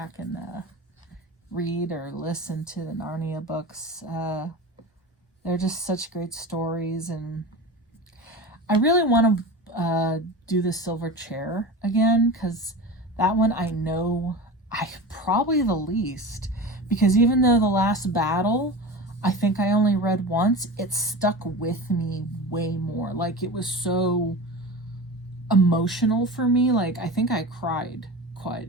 and read or listen to the Narnia books. They're just such great stories, and I really want to do the Silver Chair again, because that one I know I probably the least, because even though the last battle I think I only read once, it stuck with me way more. Like, it was so emotional for me. Like, I think I cried quite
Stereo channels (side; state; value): both; normal; correlation 0.30